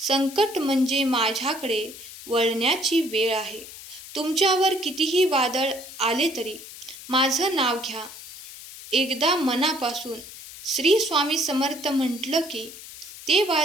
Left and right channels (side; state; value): left; noise; hiss, 14 dB below the sound